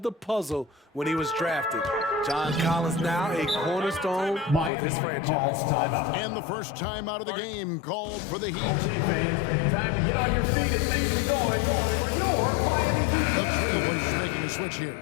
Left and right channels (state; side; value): drops out; right; at 4.7 s